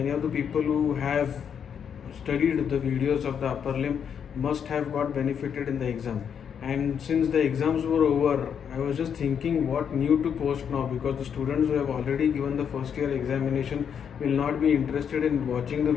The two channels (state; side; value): quieter; right; 7.7 dB